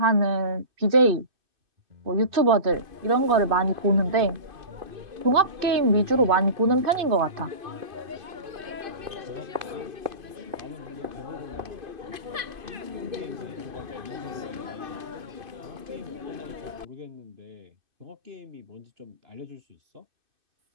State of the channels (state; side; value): late; left; 2.6 ms